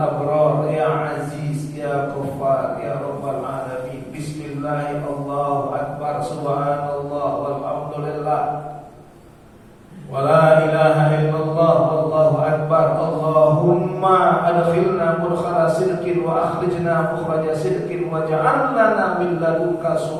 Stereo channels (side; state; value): both; identical; correlation 1.00